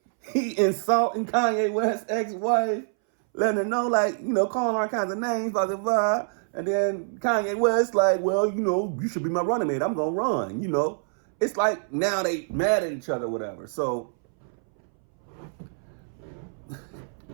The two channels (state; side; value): silent; left; 61 dB below the other